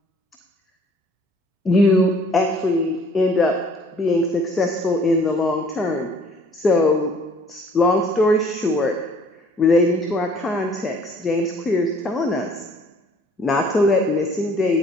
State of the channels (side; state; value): both; normal; correlation 0.56